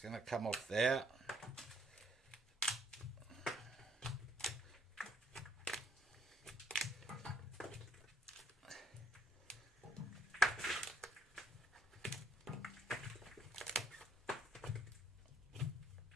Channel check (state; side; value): normal; both; correlation 0.68